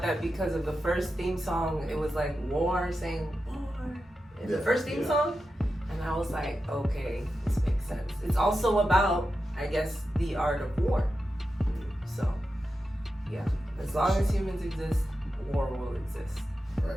that because of the first theme song. It was like war saying war in the first theme song, and I was like, okay, this makes sense. It's also about, I guess, the art of war. So. Yeah, as long as humans exist, war will exist.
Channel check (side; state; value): both; normal; correlation 0.90